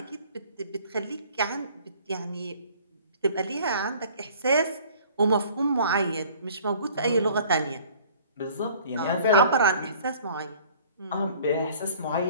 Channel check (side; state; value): both; inverted; correlation -0.51